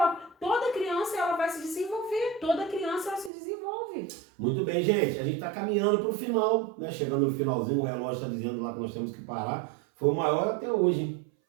Toda criança ela vai se desenvolver. Toda criança ela se desenvolve. Muito bem, gente. A gente está caminhando para o final, né? Chegando no finalzinho, o relógio está dizendo lá que nós temos que parar. Foi o maior até hoje, hein?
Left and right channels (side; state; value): left; drops out; at 3.3 s